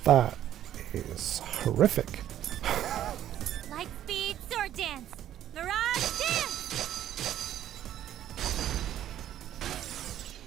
That is horrific. Light speed sword dance! Mirage dance!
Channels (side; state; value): left; quieter; 11.6 dB